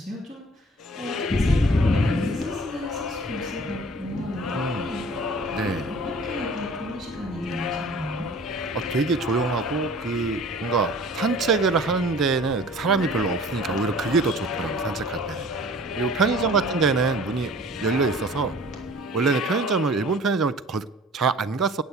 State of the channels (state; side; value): normal; both; correlation 0.46